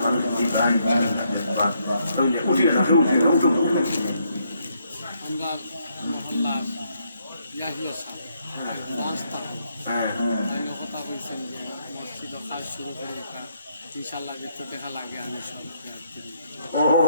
উঠিয়ে রাখে উঠিয়ে উঠো আমরা কথা বলছেন যে মসজিদ কাজ শুরু করে ইনশাল্লাহ ভিতর দেখা লাগে আমি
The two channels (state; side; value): inverted; both; correlation -0.74